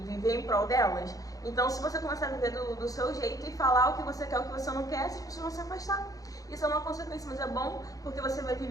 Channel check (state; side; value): late; right; 0.17 ms